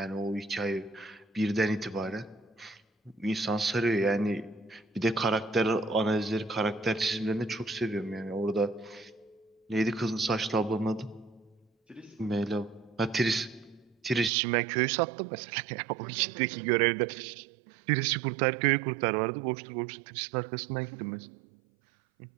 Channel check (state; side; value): drops out; left; at 14.3 s